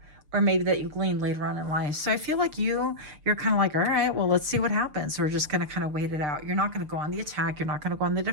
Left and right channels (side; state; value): left; late; 6.7 ms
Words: or maybe that you gleaned later on in life. So I feel like you're kind of like, all right, well, let's see what happens. We're just going to kind of wait it out. You're not going to go on the attack. You're not going to go on the